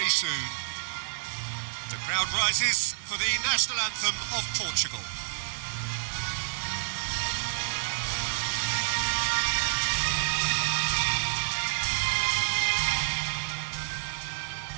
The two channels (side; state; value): left; silent; digital silence